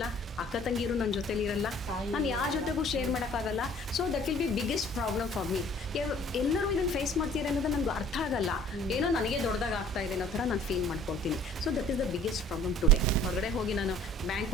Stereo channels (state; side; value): normal; both; correlation 0.52